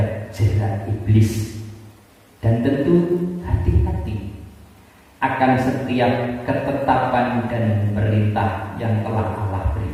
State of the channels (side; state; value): both; identical; correlation 1.00